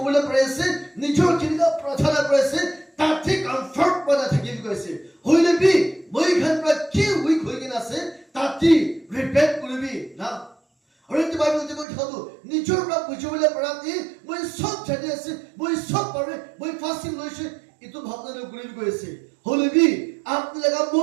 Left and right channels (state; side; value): drops out; left; at 11.9 s